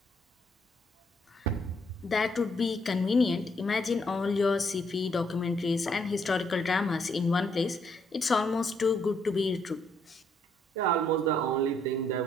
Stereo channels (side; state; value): both; normal; correlation 0.72